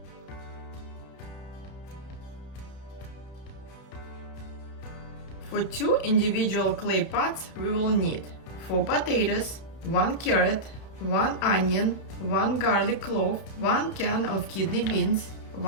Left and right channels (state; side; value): late; right; 31 ms